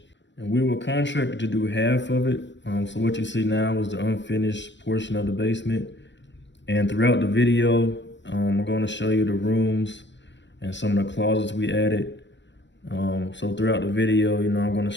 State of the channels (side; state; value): right; late; 0.53 ms